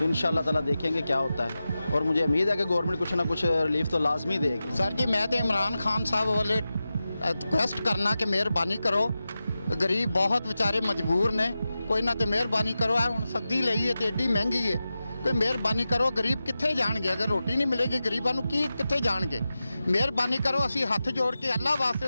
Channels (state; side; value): inverted; both; correlation -0.93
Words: इंशाल्लाह ताला देखेंगे क्या होता है। और मुझे उम्मीद है कि गवर्नमेंट कुछ ना कुछ रिलीफ तो लाजमी देगी। सर जी मैं तो इमरान खान साहब वाले रिक्वेस्ट करना कि मेहरबानी करो, गरीब बहुत बेचारे मजबूर ने, कोई ना तो मेहरबानी करो। हुण सब्जी लई है तो एडी महंगी है, कोई मेहरबानी करो। गरीब कित्थे जाणगे अगर रोटी नहीं मिलेगी, गरीबां नूं की कित्थे जाणगे। मेहरबानी करो, असीं हत्थ जोड़ के अल्लाह वास्ते